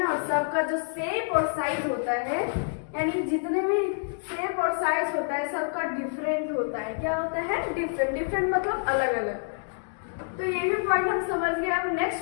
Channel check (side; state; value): right; silent; digital silence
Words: और सबका जो शेप और साइज होता है, यानी जितने भी शेप और साइज होता है सबका डिफरेंट होता है। क्या होता है, डिफरेंट मतलब अलग अलग। तो ये भी पॉइंट हम समझ गए। अब